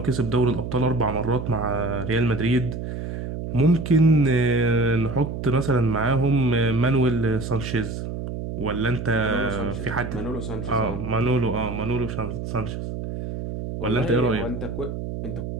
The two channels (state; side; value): noise; right; hum, 6 dB below the sound